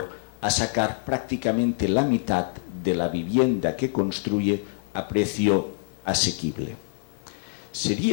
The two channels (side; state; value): right; silent; digital silence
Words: a sacar prácticamente la mitad de la vivienda que construye a precio asequible.